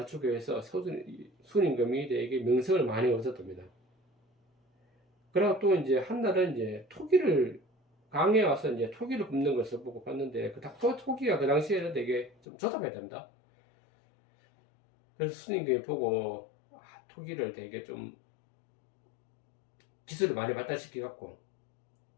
위해서 순임금이 되게 명성을 많이 얻었답니다. 그리고 또 이제 한날은 이제 토기를 강에 와서 이제 토기를 굽는 것을 보고 봤는데 토기가 그 당시에는 되게 좀 조잡했답니다. 그래서 순임금이 보고 토기를 되게 좀 기술을 많이 발달시켜 갖고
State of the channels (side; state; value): right; drops out; at 12.4 s